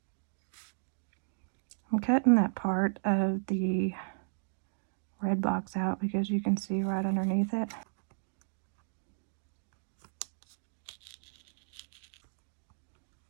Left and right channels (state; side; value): silent; left; digital silence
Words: I'm cutting that part of the red box out because you can see right underneath it.